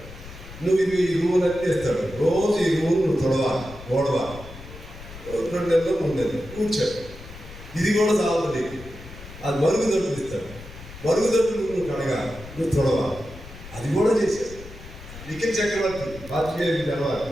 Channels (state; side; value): noise; left; rumble, 15 dB below the sound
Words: నువ్వు ఇది ఈ రూల్ అన్నీ ఇస్తాడు. రోజు ఈ రూల్ నువ్వు తొడవాలి, ఓడవాలి, 2 నెలలు 3 నెలలు కూర్చోడు. ఇది కూడా చాలు నీకు. అది మరుగుదొడ్లు ఇస్తాడు, మరుగుదొడ్లు నువ్వు కడగాలి, నువ్వు తొడవాలి. అది కూడా చేశాడు. నిఖిల్ చక్రవర్తి పాత్రికేయుడికి తెలవాలి,